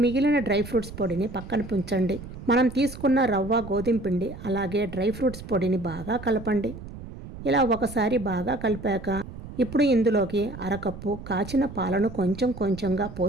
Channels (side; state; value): right; noise; rumble, 13 dB below the sound